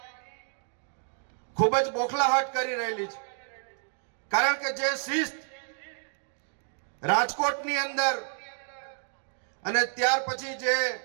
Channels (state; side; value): silent; left; 58 dB below the other